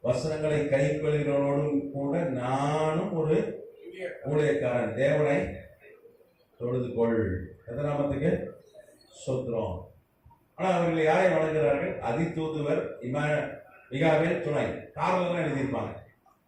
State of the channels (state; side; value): identical; both; correlation 1.00